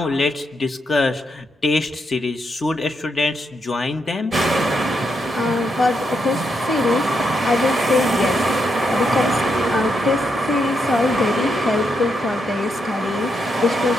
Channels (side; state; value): both; normal; correlation 0.81